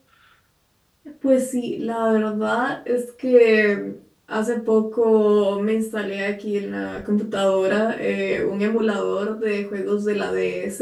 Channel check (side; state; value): both; identical; correlation 1.00